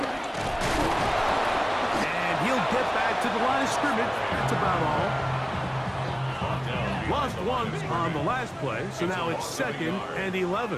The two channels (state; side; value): identical; both; correlation 1.00